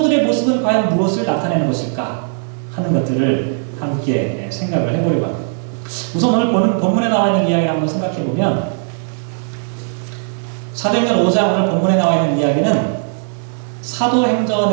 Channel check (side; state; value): left; silent; 68 dB below the other